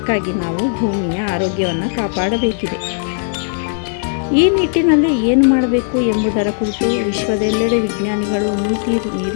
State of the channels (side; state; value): right; silent; 62 dB below the other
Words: ನಾವು ಭೂಮಿಯ ಆರೋಗ್ಯವನ್ನು ಕಾಪಾಡಬೇಕಿದೆ. ಈ ನಿಟ್ಟಿನಲ್ಲಿ ಏನು ಮಾಡಬೇಕು ಎಂಬುದರ ಕುರಿತು ವಿಶ್ವದೆಲ್ಲೆಡೆ ವಿಜ್ಞಾನಿಗಳು, ನೀತಿ